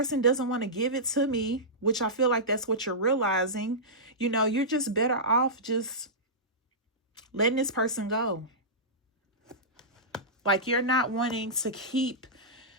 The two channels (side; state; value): both; normal; correlation -0.15